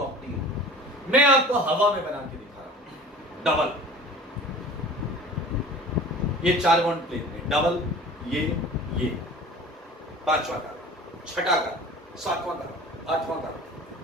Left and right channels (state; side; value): normal; both; correlation 0.42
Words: मैं आपको हवा में बना के दिखा रहा हूं, डबल, ये चार बॉन्ड प्लेन में डबल, ये पांचवा कार्बन, छठा कार्बन, सातवां कार्बन, आठवां कार्बन,